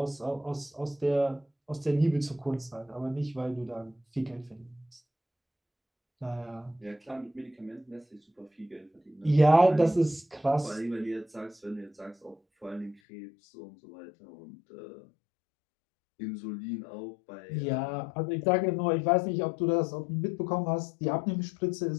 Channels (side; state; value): right; drops out; at 13.0 s